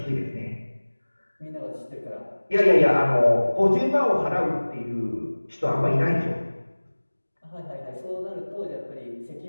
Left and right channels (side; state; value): both; inverted; correlation -1.00